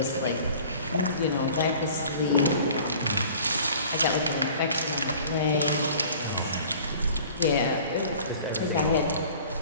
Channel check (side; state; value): both; inverted; correlation -0.47